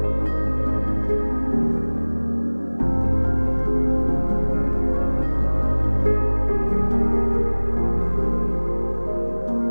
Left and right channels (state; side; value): inverted; both; correlation -1.00